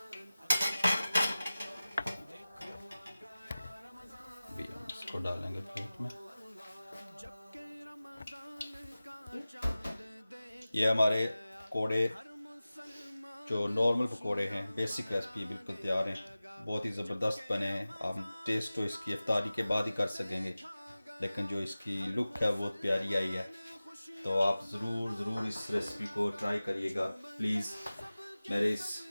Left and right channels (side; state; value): both; inverted; correlation -0.97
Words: इसको डालेंगे प्लेट में। ये हमारे पकौड़े जो नॉर्मल पकौड़े हैं, बेसिक रेसिपी बिल्कुल तैयार हैं, बहुत ही ज़बरदस्त बने हैं। आप टेस्ट तो इसकी इफ्तारी के बाद ही कर सकेंगे, लेकिन जो इसकी लुक है वो प्यारी आई है। तो आप ज़रूर इस रेसिपी को ट्राई करिएगा। प्लीज़ मेरे इस